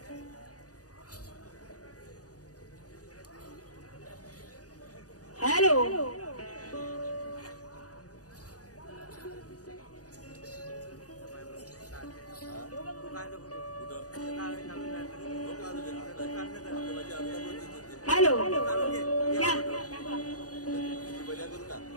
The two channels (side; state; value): right; late; 0.67 ms